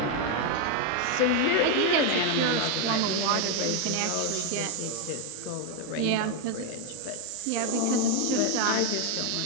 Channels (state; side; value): different; both; correlation 0.01